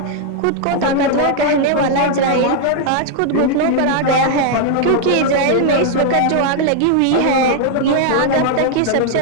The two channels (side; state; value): both; different; correlation 0.00